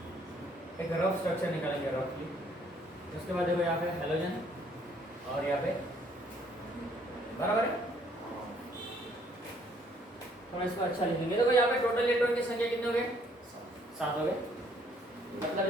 एक रफ स्ट्रक्चर निकालेंगे रफली। उसके बाद देखो यहाँ पे हेलोजन और यहाँ पे बराबर है। हम इसको अच्छा लिखेंगे। देखो यहाँ पे टोटल इलेक्ट्रॉन की संख्या कितने हो गए? 7 हो गए। मतलब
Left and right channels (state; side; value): normal; both; correlation 0.64